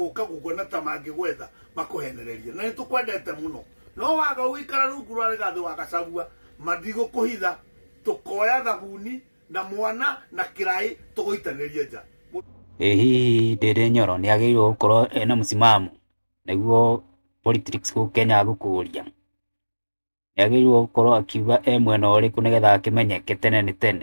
gukona ta mangigwetha makuhenererie na nitukwendete muno. No waga wikara rungu rwa Rigathi wa Gachagua mathigo kuhitha tukoya thabuni na mwana na kirai tugoitanirie nja. Hihi Ndindi Nyoro ni agirwo gukorwo ena musimamo niguo politics ku Kenya gukuria. Ni agirwo gukorwo akiuga mwena uriku nigetha akimenyeke tene ni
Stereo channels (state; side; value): inverted; both; correlation -1.00